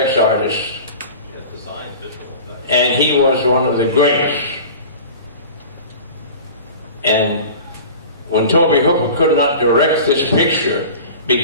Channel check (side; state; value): both; inverted; correlation -0.37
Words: artist. And he was one of the greats. And when Toby Hooper could not direct this picture,